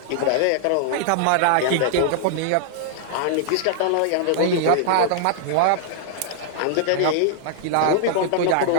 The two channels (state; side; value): different; both; correlation -0.01